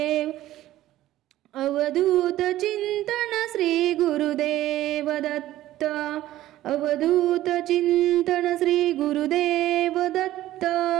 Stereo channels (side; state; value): left; quieter; 14.5 dB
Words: अवधूत चिंतन श्री गुरुदेव दत्त अवधूत चिंतन श्री गुरुदेव दत्त